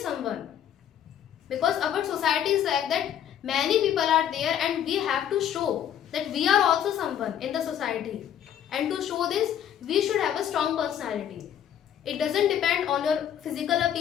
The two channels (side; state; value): right; quieter; 9.9 dB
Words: Because our society is like that, many people are there, and we have to show that we are also someone in the society. And to show this, we should have a strong personality. It doesn't depend on your physical